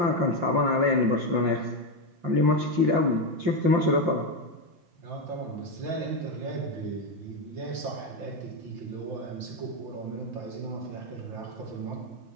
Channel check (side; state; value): left; late; 5.7 ms